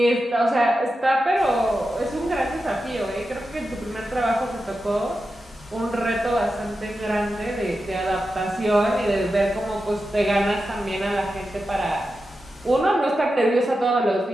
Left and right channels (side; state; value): both; normal; correlation 0.90